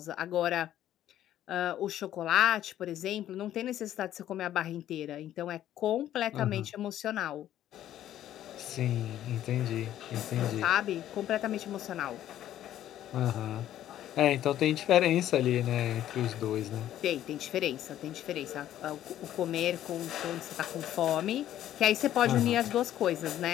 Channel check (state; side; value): quieter; right; 12.1 dB